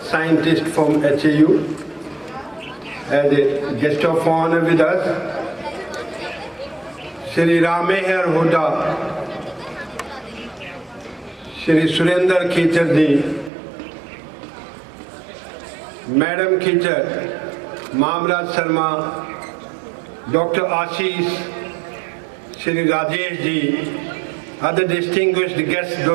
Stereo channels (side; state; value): left; drops out; at 13.5 s